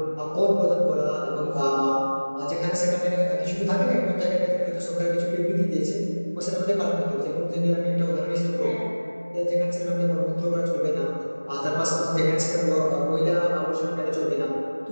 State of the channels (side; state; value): both; inverted; correlation -1.00